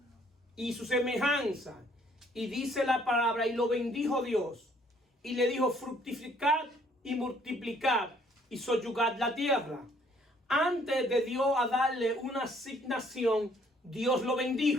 y su semejanza. Y dice la palabra: y lo bendijo Dios, y le dijo: fructificad y multiplicad y soyugad la tierra. Antes de Dios a darle una asignación, Dios lo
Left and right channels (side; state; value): both; normal; correlation 0.62